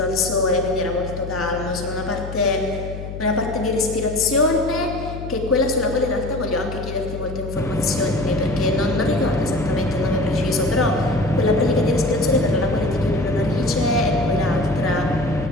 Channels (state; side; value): noise; left; hum, 9 dB below the sound